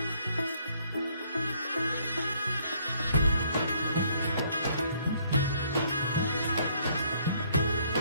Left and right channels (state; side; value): inverted; both; correlation -0.66